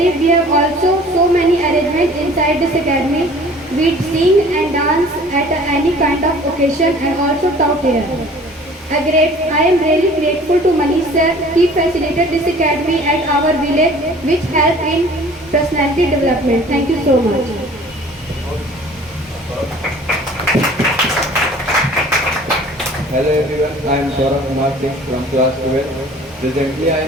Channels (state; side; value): normal; both; correlation 0.49